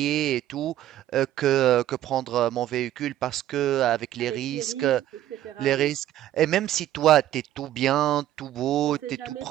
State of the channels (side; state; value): left; quieter; 12.9 dB